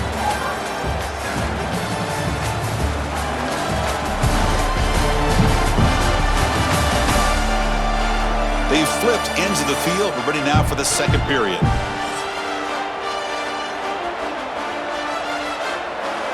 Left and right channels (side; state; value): both; identical; correlation 1.00